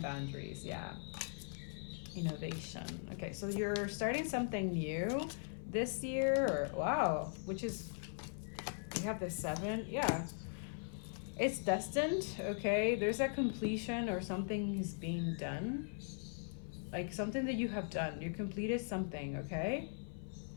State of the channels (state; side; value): silent; right; 51 dB below the other